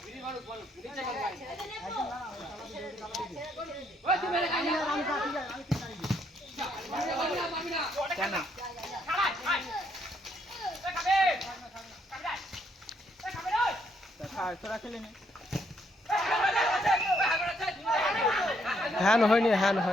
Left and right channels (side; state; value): both; normal; correlation 0.73